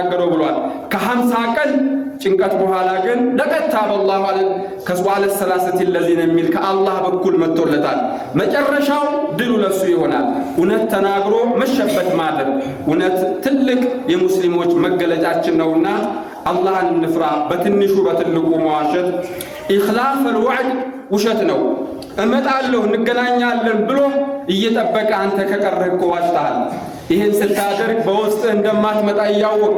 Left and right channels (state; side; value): identical; both; correlation 1.00